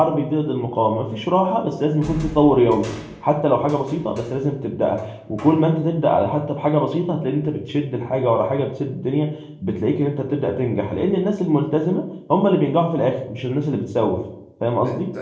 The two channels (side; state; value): both; identical; correlation 1.00